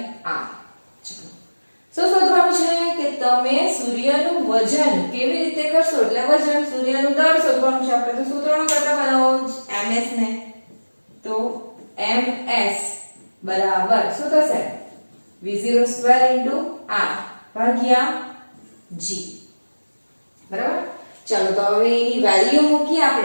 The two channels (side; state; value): both; inverted; correlation -1.00